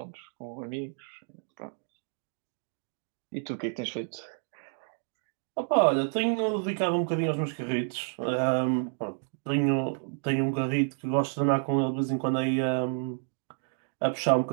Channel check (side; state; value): left; silent; 58 dB below the other